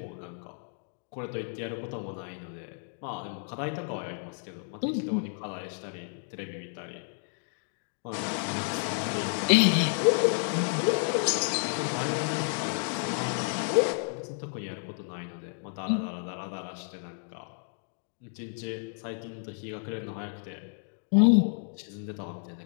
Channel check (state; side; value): silent; right; 57 dB below the other